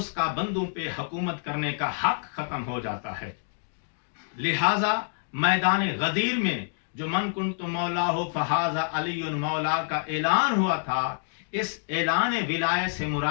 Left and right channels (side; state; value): right; silent; digital silence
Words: کا بندوں پہ حکومت کرنے کا حق ختم ہو جاتا ہے۔ لہذا میدان غدیر میں جو من کنت مولا ہو فہذا علی مولا کا اعلان ہوا تھا، اس اعلان ولایت سے